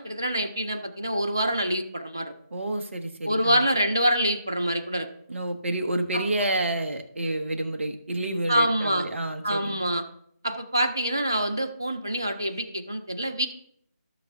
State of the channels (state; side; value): inverted; both; correlation -0.75